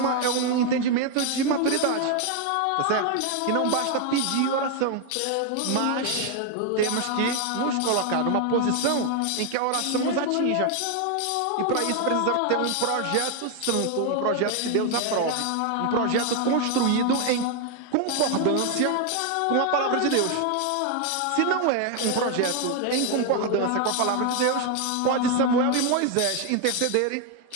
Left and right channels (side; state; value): both; different; correlation 0.01